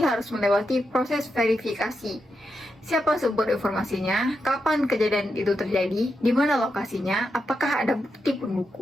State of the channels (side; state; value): both; normal; correlation 0.86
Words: melewati proses verifikasi. Siapa sumber informasinya, kapan kejadian itu terjadi, di mana lokasinya, apakah ada bukti